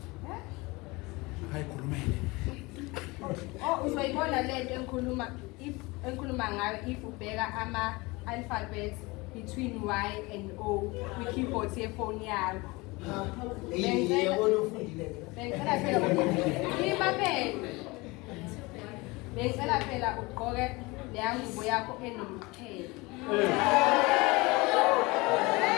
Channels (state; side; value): quieter; right; 23.9 dB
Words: Hayikhulumele. Uzoyibona lento engikhuluma ngayo if ubheka ama-alphabets between Y and O kwi-keyboard yefoni yakho. Bengicela phela ugqoke leya ngubo yakho enomqhele.